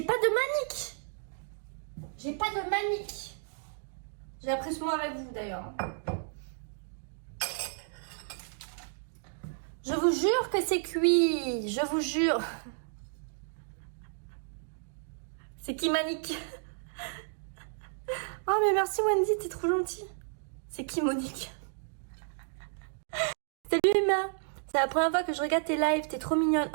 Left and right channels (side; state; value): left; silent; digital silence